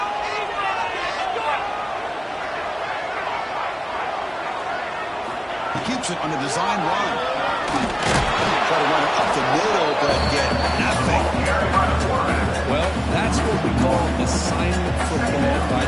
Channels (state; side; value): identical; both; correlation 1.00